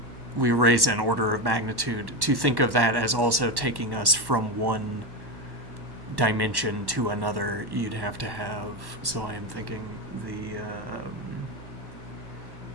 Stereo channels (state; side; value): late; left; 1.1 ms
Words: raise an order of magnitude, to think of that as also taking us from one dimension to another, you'd have to have... so I am thinking